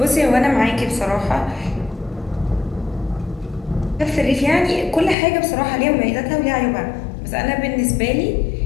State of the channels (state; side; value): drops out; right; at 5.2 s